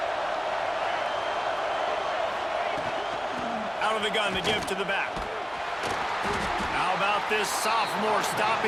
Out of the gun, the give to the back. How about this sophomore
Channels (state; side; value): identical; both; correlation 1.00